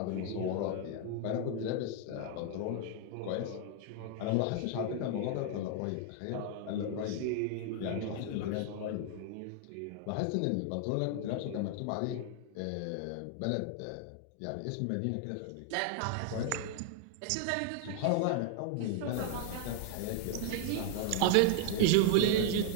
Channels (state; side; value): different; both; correlation 0.00